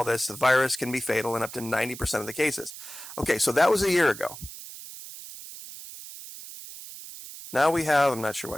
this. The virus can be fatal in up to 90% of the cases. Okay, so that was a year ago. Now we have, I'm not sure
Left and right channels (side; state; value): right; noise; hiss, 13 dB below the sound